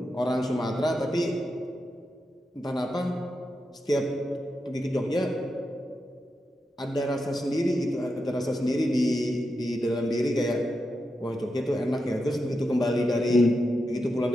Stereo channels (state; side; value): normal; both; correlation 0.87